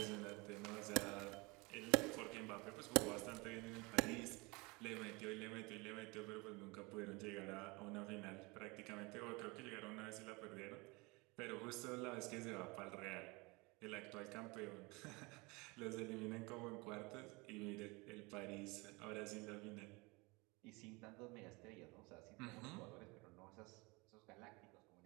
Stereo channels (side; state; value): left; quieter; 26.1 dB